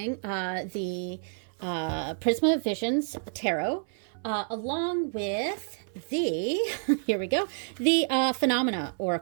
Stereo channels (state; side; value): silent; left; 56 dB below the other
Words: the Prisma Visions Tarot, along with here we go, the Phenomena